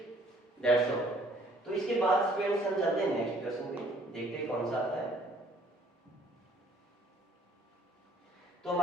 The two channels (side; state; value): both; normal; correlation 0.59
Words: that's all. तो इसके बाद स्टूडेंट्स हम चलते हैं नेक्स्ट क्वेश्चन पे, देखते हैं कौन सा आता है। तो